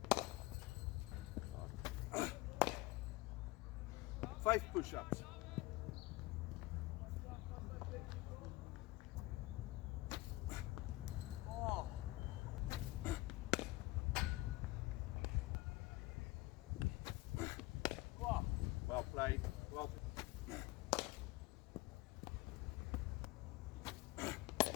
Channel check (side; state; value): right; quieter; 20.2 dB